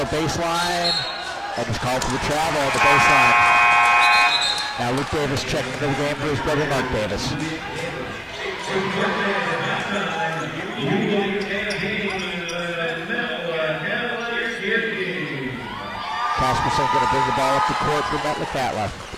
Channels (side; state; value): both; identical; correlation 1.00